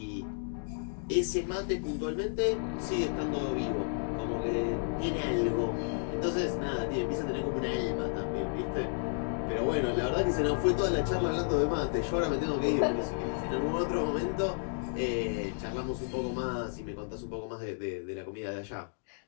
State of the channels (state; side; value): silent; right; 56 dB below the other